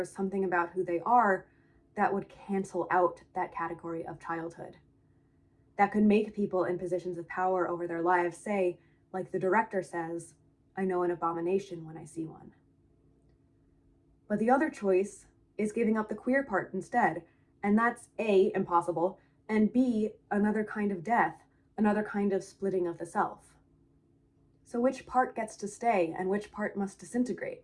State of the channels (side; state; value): both; identical; correlation 1.00